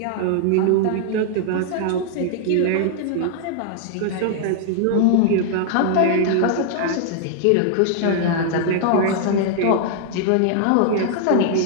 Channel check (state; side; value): different; both; correlation -0.01